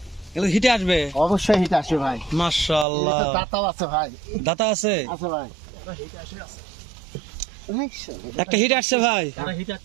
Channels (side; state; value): left; drops out; at 2.9 s